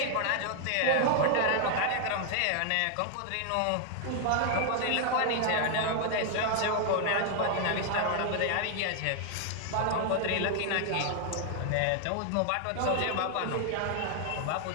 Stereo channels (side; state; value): both; different; correlation 0.00